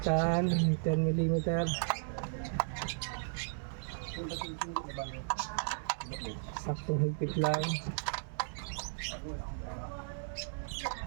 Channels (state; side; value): silent; left; digital silence